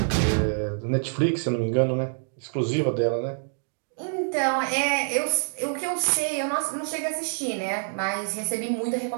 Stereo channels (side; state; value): left; silent; digital silence